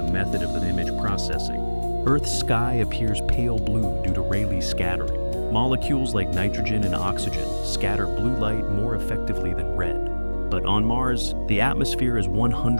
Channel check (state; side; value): inverted; both; correlation -1.00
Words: method of the image processing. Earth's sky appears pale blue due to Rayleigh scattering. Molecules like nitrogen and oxygen scatter blue light more effectively than red. But on Mars, the atmosphere is